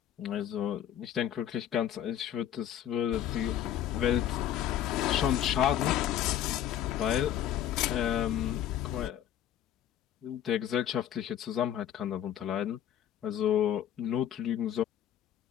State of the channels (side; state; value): right; quieter; 10.6 dB